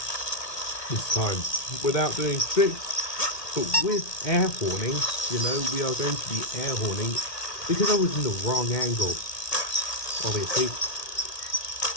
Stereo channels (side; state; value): right; late; 1.8 ms